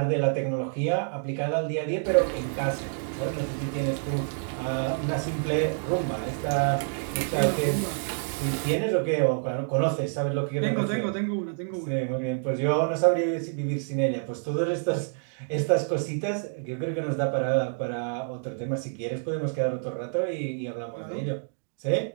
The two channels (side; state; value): left; silent; digital silence